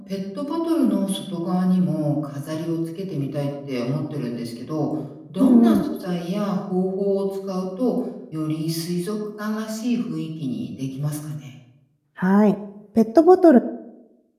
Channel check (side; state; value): both; identical; correlation 1.00